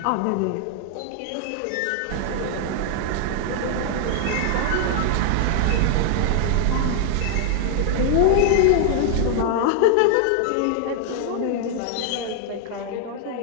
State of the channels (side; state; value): both; different; correlation 0.00